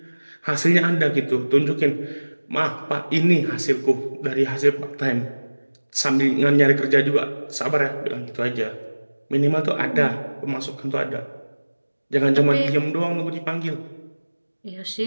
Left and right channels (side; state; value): both; inverted; correlation -1.00